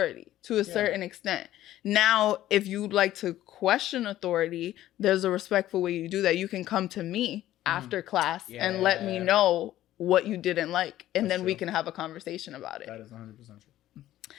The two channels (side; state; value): right; quieter; 13.8 dB